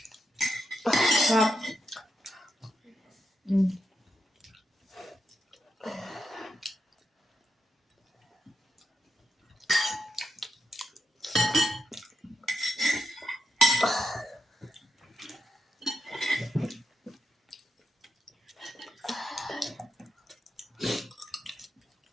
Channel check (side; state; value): both; normal; correlation 0.85